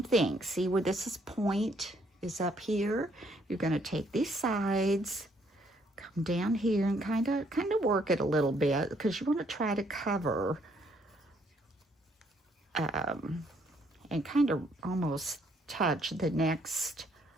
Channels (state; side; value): normal; both; correlation 0.68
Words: thing. See where this point is up here? You're going to take these sides, come down here, and kind of work it a little bit, because you want to try to cover and kind of almost touch the next